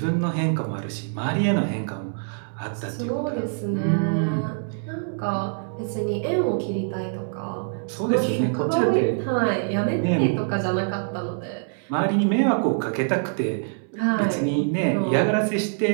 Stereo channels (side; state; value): left; silent; 62 dB below the other